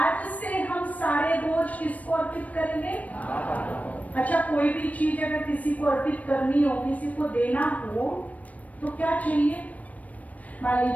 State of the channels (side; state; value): right; late; 0.070 ms